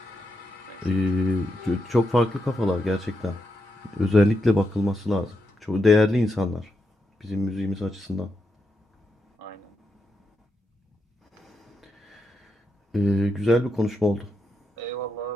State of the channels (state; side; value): normal; both; correlation 0.84